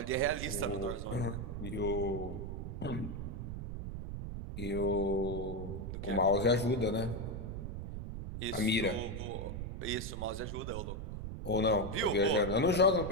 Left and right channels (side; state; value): right; noise; rumble, 6 dB below the sound